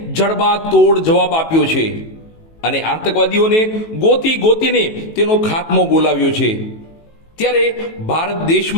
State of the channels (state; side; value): late; right; 18 ms